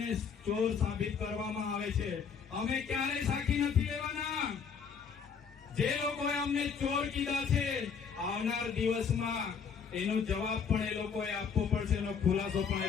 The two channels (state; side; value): quieter; right; 6.4 dB